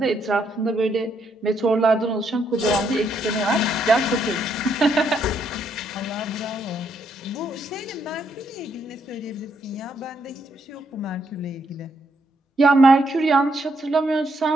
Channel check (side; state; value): both; normal; correlation 0.75